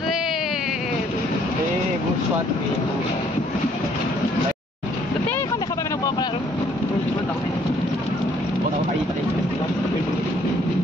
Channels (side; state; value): both; normal; correlation 0.64